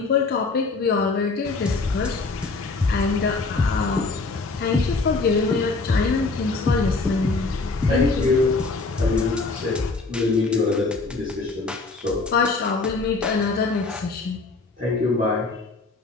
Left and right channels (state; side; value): quieter; right; 3.8 dB